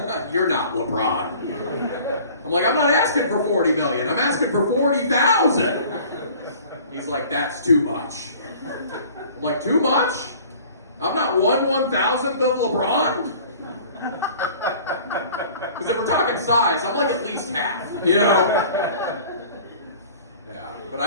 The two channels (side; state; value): both; inverted; correlation -0.48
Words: you're not LeBron. I'm like, I'm not asking for $40 million. I'm asking for $40,000. He's like, that's too much. I'm like, too much? I'm not 1/1000th of LeBron? Because if we're talking size, I'm like at least half, Yeah. But